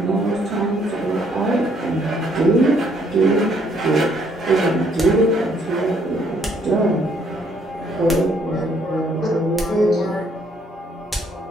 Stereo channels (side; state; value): both; normal; correlation 0.67